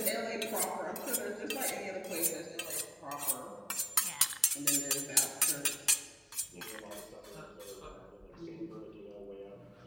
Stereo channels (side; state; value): both; identical; correlation 1.00